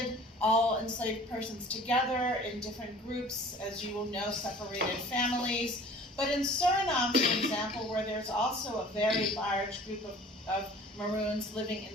all enslaved persons together in different groups, as you will know, separated families. But in Suriname, for example, where there's also a very large group of Maroons living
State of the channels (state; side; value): normal; both; correlation 0.47